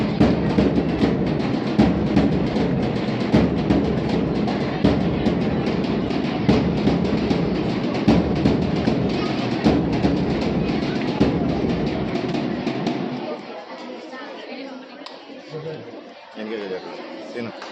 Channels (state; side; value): identical; both; correlation 1.00